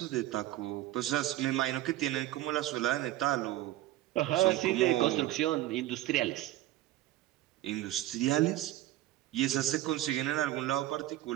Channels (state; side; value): quieter; left; 15.1 dB